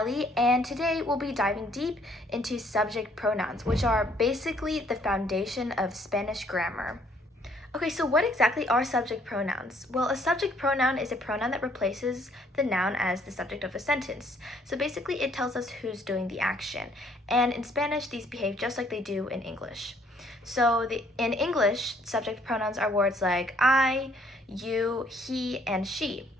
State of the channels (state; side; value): normal; both; correlation 0.64